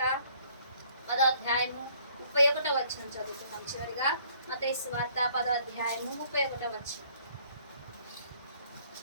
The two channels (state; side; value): inverted; both; correlation -0.61